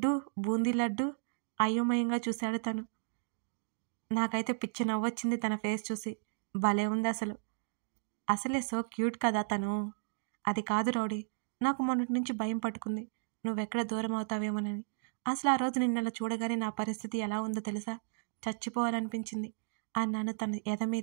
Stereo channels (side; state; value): left; silent; digital silence